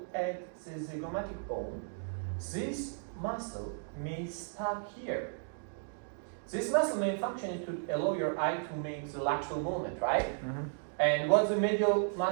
at the zygomatic bone, this muscle may stop here. This muscle main function is to allow your eye to make the lateral movement, right? And what's the medial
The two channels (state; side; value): silent; left; digital silence